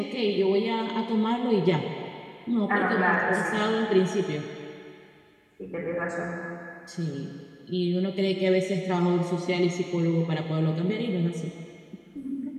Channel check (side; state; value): both; identical; correlation 1.00